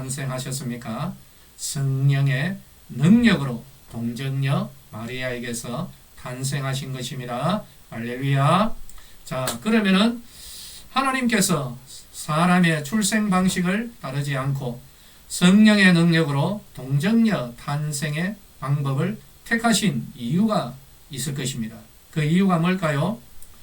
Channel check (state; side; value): identical; both; correlation 1.00